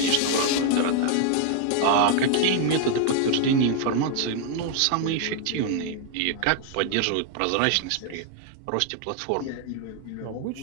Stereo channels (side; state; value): both; different; correlation 0.00